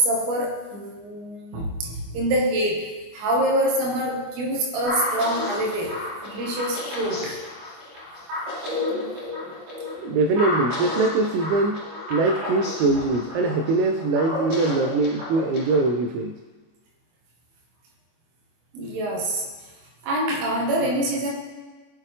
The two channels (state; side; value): late; left; 24 ms